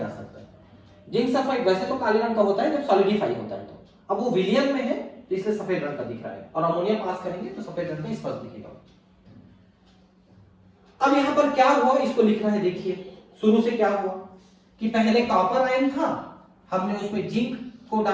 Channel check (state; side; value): identical; both; correlation 1.00